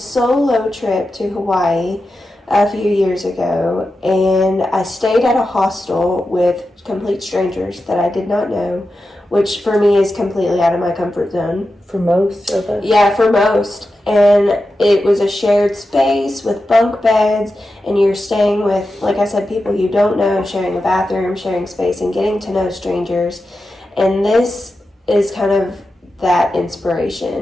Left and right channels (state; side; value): normal; both; correlation 0.91